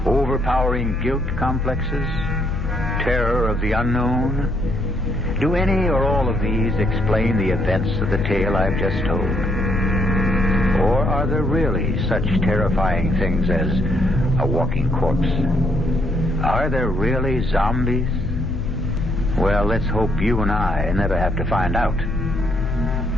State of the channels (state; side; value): noise; left; hum, 15 dB below the sound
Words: overpowering guilt complexes, terror of the unknown. Do any or all of these explain the events of the tale I've just told? Or are there really such terrifying things as a walking corpse? Are there really zombies? Well, let's hope you and I never have to find out.